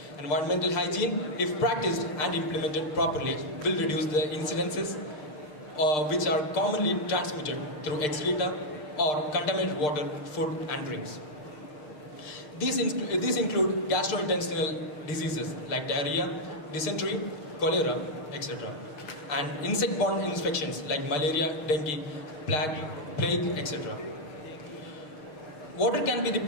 Environmental hygiene, if practiced and implemented properly, will reduce the incidences which are commonly transmitted through excreta or contaminated water, food and drinks. These include gastrointestinal diseases like diarrhea, dysentery, cholera, etc. and insect-borne infections like malaria, dengue, plague, etc. Water can be the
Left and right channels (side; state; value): right; late; 6.7 ms